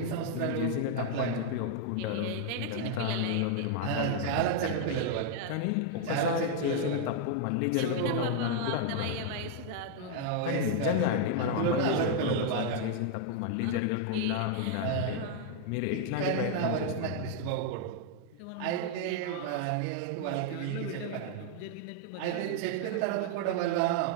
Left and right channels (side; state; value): both; different; correlation 0.00